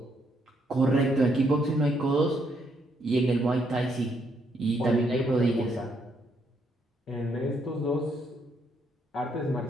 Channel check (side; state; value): both; normal; correlation 0.73